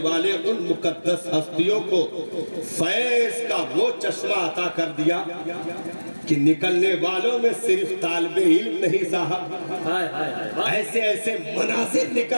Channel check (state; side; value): inverted; both; correlation -1.00